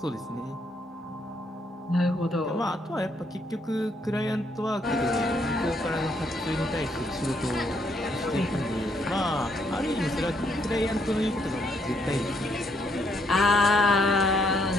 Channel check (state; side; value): normal; both; correlation 0.72